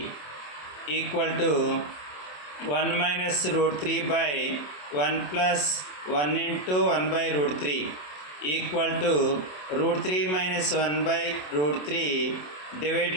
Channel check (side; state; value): right; late; 27 ms